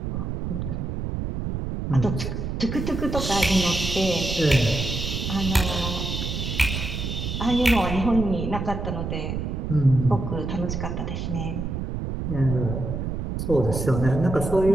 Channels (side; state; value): right; noise; rumble, 3 dB below the sound